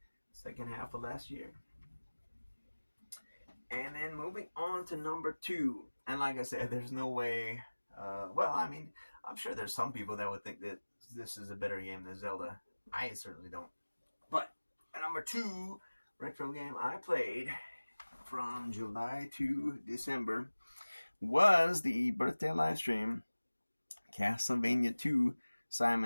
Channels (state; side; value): inverted; both; correlation -1.00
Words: second half of last year. And then moving on to number 2. And like I said, there's no way. Well, I mean, I'm sure there's some people that would think that this is a better game than Zelda. I certainly don't. But number 2 retro game I played from July to December was the birthday live stream Castlevania 2